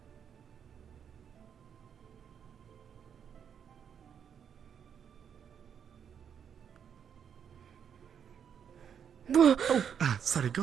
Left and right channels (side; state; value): left; quieter; 7.9 dB